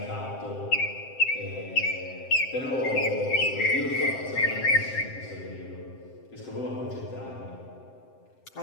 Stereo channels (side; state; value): right; late; 7.7 ms